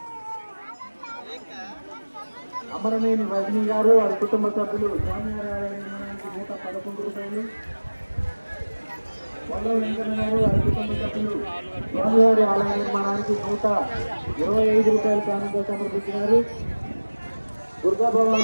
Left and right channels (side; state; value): both; inverted; correlation -1.00